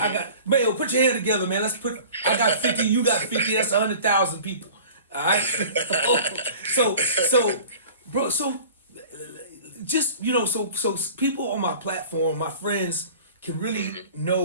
got Mayo. Put your hand together, man. I got 50. You got 50. That's 100,000 people. All right. So, bro. So, just so people on my platform, my friends, can really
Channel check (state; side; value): inverted; both; correlation -0.43